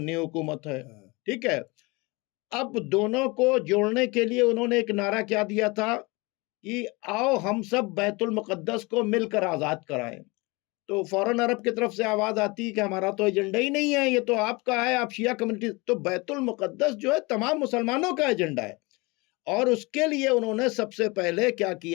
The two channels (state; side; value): quieter; right; 25.6 dB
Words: हुकूमत है, ठीक है। अब दोनों को जोड़ने के लिए उन्होंने एक नारा क्या दिया था कि आओ हम सब बैतुल मुक़द्दस को मिलकर आज़ाद कराएं। तो फौरन अरब की तरफ से आवाज़ आती है कि हमारा तो एजेंडा ही नहीं है, ये तो आपका है, आप शिया कम्युनिटी। तो बैतुल मुक़द्दस जो है तमाम मुसलमानों का एजेंडा है, और उसके लिए उन्होंने सबसे पहले क्या